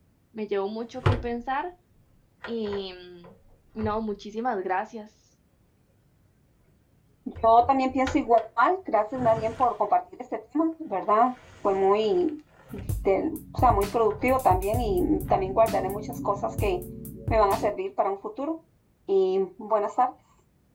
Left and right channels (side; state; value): both; identical; correlation 1.00